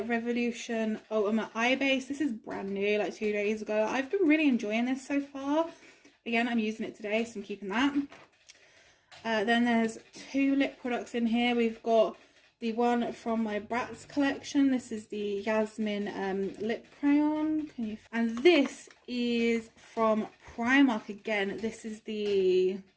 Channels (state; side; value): identical; both; correlation 1.00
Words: Revolution Ultimate Eye Base. This is brand new, like 2 days ago. I've been really enjoying this so far. Again, I'm using it today, so I'm keeping that. Then there's 2 lip products in here. We've got the one from my Bratz collection. This is the Yasmin Lip Crayon. And this is from Primark again. This is the